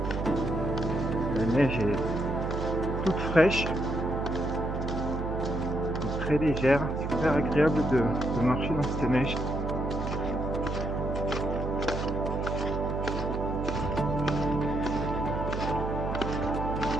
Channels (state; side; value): noise; right; hum, 3 dB below the sound